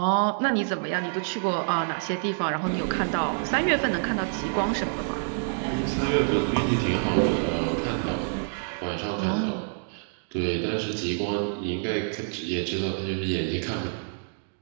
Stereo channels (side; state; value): left; silent; digital silence